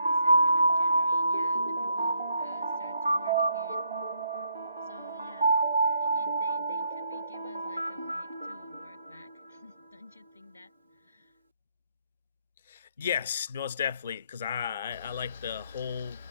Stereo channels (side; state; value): both; inverted; correlation -0.72